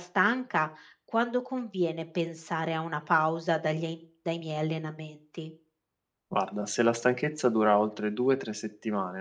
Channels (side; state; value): both; identical; correlation 1.00